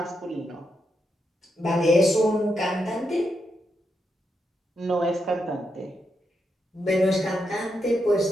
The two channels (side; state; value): both; normal; correlation 0.83